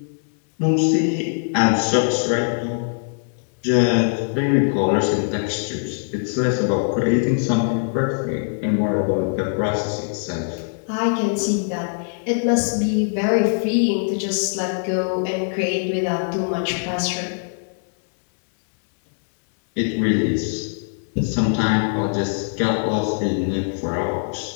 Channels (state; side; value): silent; right; digital silence